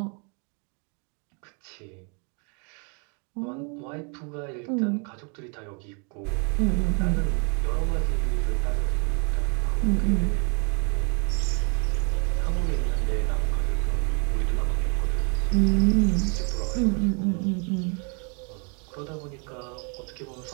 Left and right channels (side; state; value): left; quieter; 37.0 dB